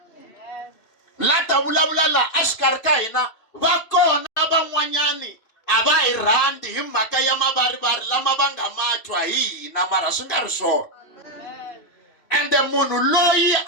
La ta vulavula laha exikarhi ka hina, va kona van'wanyani a va hi rhandzi hi mhaka ya mavarivari lama va nga ma twa hi hina, mara swi nga ri swona. Ende munhu loyi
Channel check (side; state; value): right; late; 2.8 ms